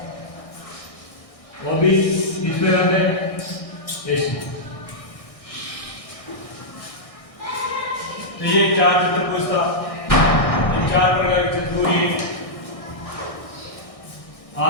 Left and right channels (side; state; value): right; late; 1.6 ms